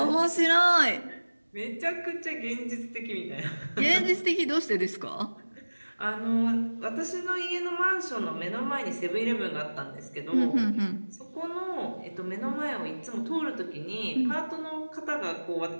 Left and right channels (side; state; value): both; inverted; correlation -1.00